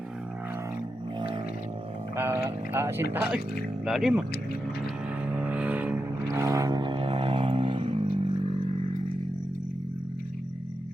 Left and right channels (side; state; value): both; normal; correlation 0.88